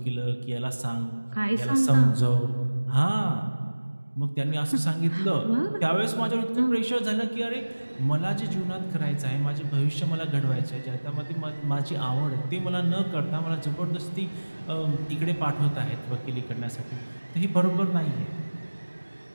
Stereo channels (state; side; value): inverted; both; correlation -1.00